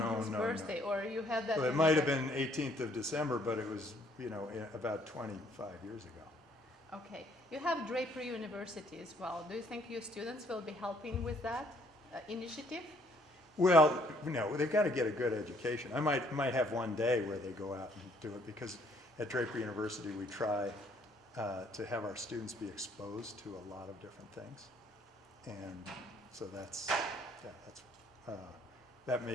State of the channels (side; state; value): both; normal; correlation 0.64